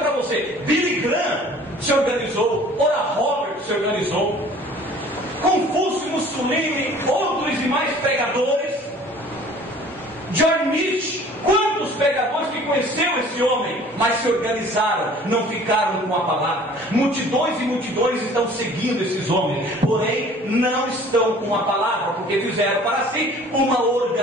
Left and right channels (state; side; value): normal; both; correlation 0.50